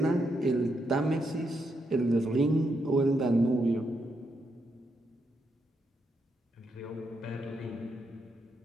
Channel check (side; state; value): both; normal; correlation 0.80